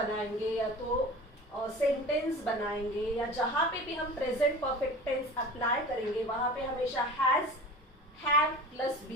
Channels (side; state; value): both; normal; correlation 0.36